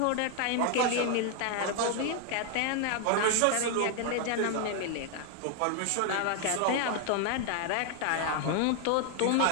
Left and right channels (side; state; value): both; different; correlation 0.01